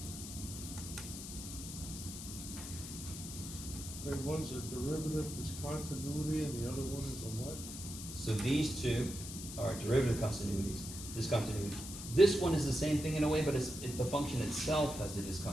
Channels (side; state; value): left; noise; hiss, 9 dB below the sound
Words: So one's a derivative discontinuity and the other one is a what? So these two are derivative continuities, discontinuity. This one is the same thing in a way, but the function itself has the